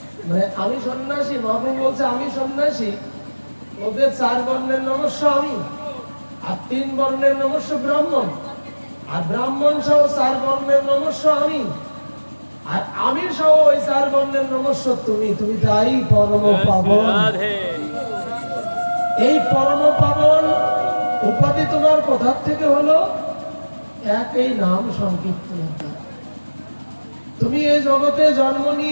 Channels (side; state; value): both; inverted; correlation -1.00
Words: মানে আমি সন্ন্যাসী, মহাপ্রভু বলছে আমি সন্ন্যাসী, ওদের 4 বর্ণের নমস্য আমি, আর 3 বর্ণের নমস্য ব্রাহ্মণ, আর ব্রাহ্মণ সহ 4 বর্ণের নমস্য আমি, আর আমি সহ ওই 4 বর্ণের নমস্য তুমি। তুমি তাই পরম পাবন। এই পরম পাবন উপাধি তোমার কোথা থেকে হলো? একই নাম সংকীর্তনের দ্বারা। তুমি এই জগতে জন্ম